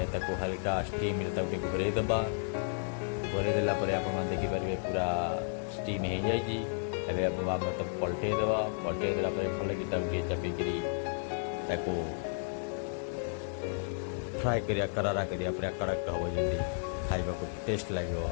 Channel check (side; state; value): right; silent; digital silence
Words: हल्का स्टीम घोरे दबा। घोरे देलापर आप देखिपारे पूरा स्टीम हो जाए। आम पलटे दबा। पलटे देलापर भल कि चापिकी फ्राए करिया करारा करिया पूरा कड़क हम जमी खाइबा को टेस्ट लगे।